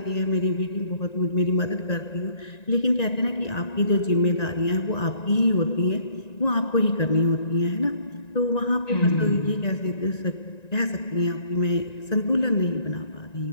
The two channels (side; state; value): right; late; 1.9 ms